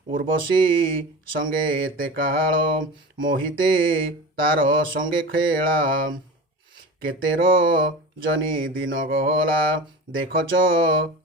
उर्वशी संगे एते काल मोहिते तार संगे खेला केतेर जनी दिन गला देखच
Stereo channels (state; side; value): normal; both; correlation 0.32